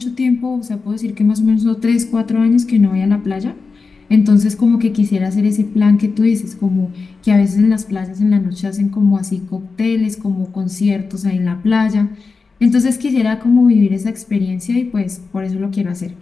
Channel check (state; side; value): quieter; right; 4.5 dB